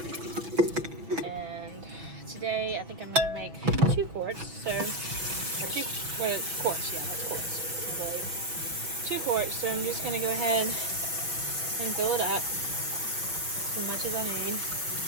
And today I think I'm gonna make 2 quarts, so quarts, yeah, that's quarts, I believe. 2 quarts, so I'm just gonna go ahead and fill it up as much as I need,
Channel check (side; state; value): left; late; 6.2 ms